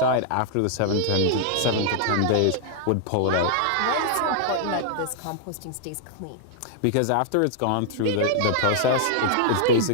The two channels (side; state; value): both; different; correlation -0.01